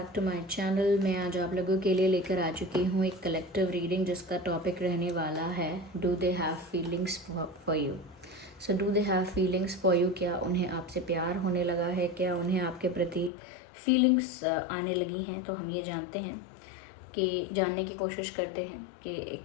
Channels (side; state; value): right; drops out; at 13.3 s